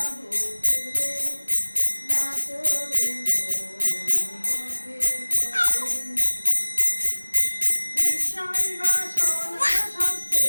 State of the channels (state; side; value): inverted; both; correlation -1.00